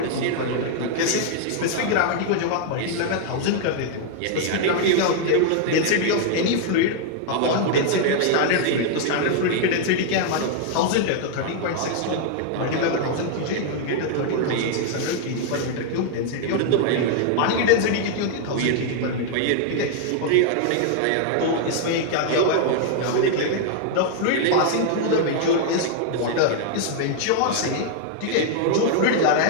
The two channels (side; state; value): both; different; correlation 0.00